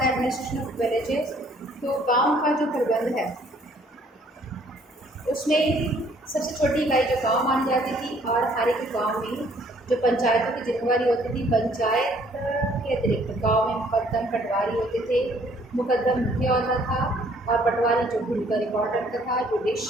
एडमिनिस्ट्रेशन ऑफ विलेजेस, तो गांव का जो प्रबंध है उसमें सबसे छोटी इकाई जो गांव मानी जाती थी और हर एक गांव में जो पंचायतों की जिम्मेवारी होती थी, पंचायत के अतिरिक्त गांव में मुकद्दम पटवारी होते थे। मुकद्दम मुखिया होता था और पटवारी जो भूमि का रिकॉर्ड रखता था।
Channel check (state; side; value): normal; both; correlation 0.61